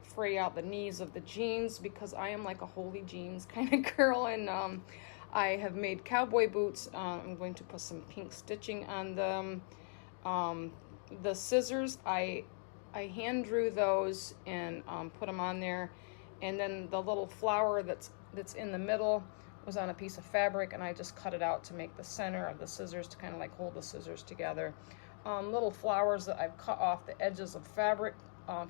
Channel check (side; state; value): right; silent; 51 dB below the other